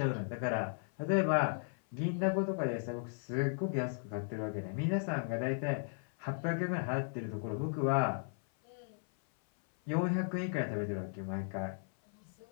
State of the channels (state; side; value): silent; right; 54 dB below the other